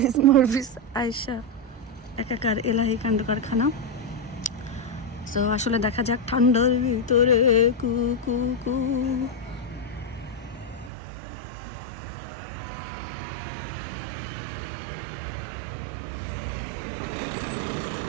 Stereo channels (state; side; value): drops out; left; at 10.9 s